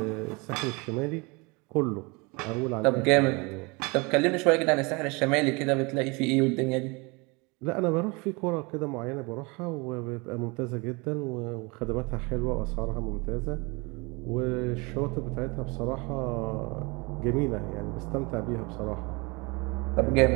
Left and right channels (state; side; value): quieter; left; 27.7 dB